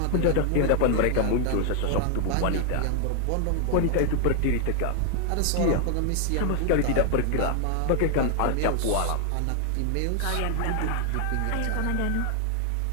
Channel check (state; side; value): different; both; correlation 0.00